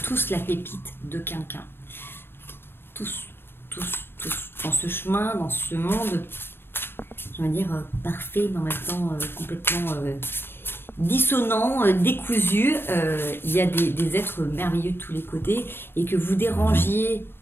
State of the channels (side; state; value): right; late; 0.10 ms